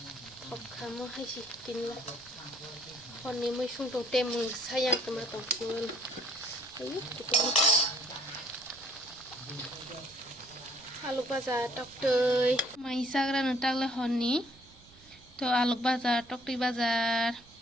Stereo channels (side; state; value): right; noise; rumble, 25 dB below the sound